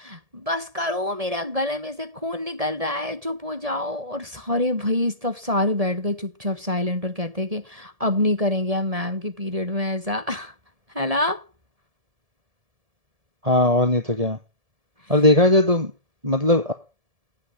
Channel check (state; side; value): late; left; 1.7 ms